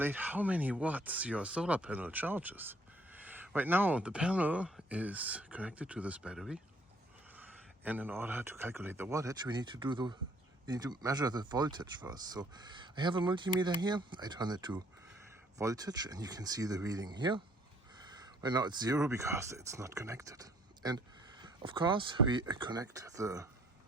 how many watts your solar panel charges. Right now the panel is connected to this battery, and in order to calculate the wattage we need to measure the voltage first. So I have a multimeter here, I turn it to voltage and you can see the reading here. Right now it's 0 because it's not connected. And of course we connect the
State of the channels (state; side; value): normal; both; correlation 0.62